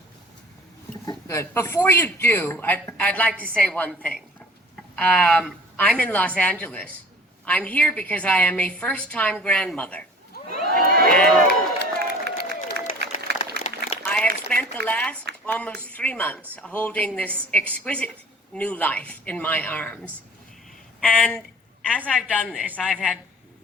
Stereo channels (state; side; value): normal; both; correlation 0.46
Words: Good. Before you do, I'd like to say one thing. I'm in Los Angeles. I'm here because I am a first-time grandmother. And I have spent the last almost 3 months holding this exquisite new life in my arms. And as I've done this, I've had